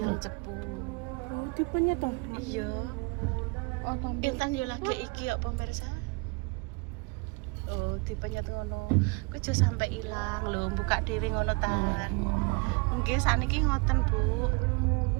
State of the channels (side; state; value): left; quieter; 29.9 dB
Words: Cepu. Tipenya tuh. Iya. Oh, tambah. Intan yo lagi iki ya pemirsa. Oh, tipenya tuh ngono. Ku aja sampe ilang lho, buka dhewe ngono tan. Nggih saniki ngoten, Bu.